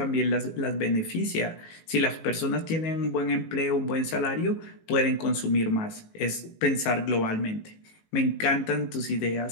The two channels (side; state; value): right; late; 18 ms